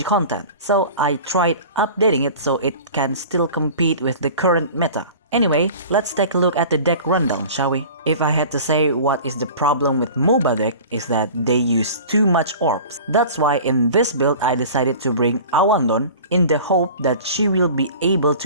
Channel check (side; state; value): both; inverted; correlation -0.40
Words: content, so I tried updating it so it can still compete with the current meta. Anyway, let's take a look at the deck rundown, shall we? If I had to say what is the problem with Mouba deck is that they use too much orbs. That's why in this build I decided to bring Awandon in the hope that she will be able